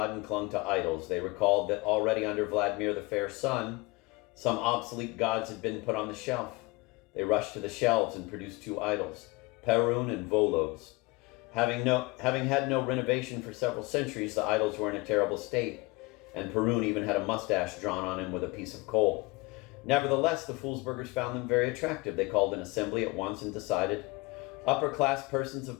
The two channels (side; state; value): right; quieter; 24.6 dB